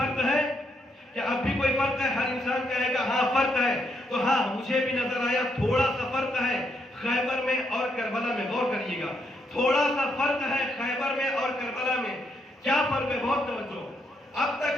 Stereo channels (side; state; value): both; normal; correlation 0.76